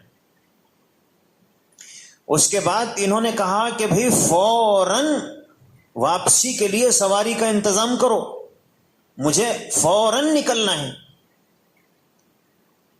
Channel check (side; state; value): both; identical; correlation 1.00